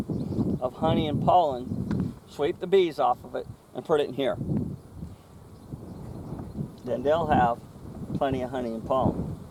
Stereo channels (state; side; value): identical; both; correlation 1.00